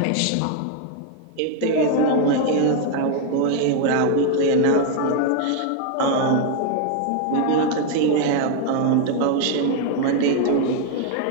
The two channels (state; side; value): different; both; correlation 0.00